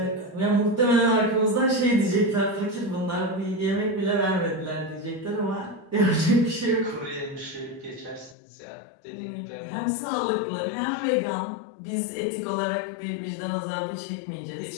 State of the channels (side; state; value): right; drops out; at 8.3 s